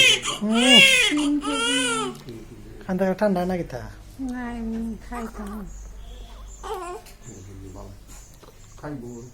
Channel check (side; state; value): both; identical; correlation 1.00